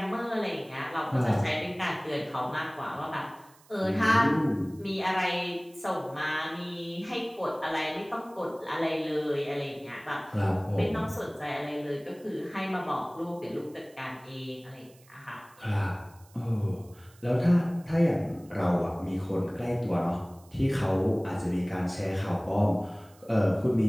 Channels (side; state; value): right; noise; hiss, 27 dB below the sound